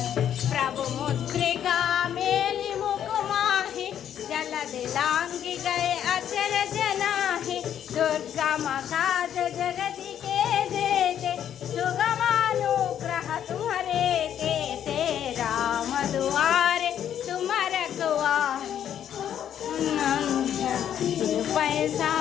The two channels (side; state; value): right; quieter; 9.8 dB